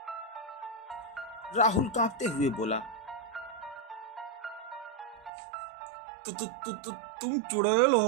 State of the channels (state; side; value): drops out; left; at 5.3 s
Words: राहुल कांपते हुए बोला, तुम चुड़ैल